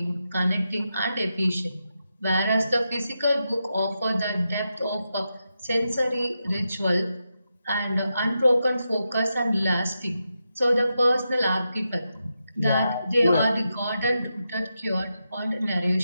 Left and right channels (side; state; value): both; inverted; correlation -0.87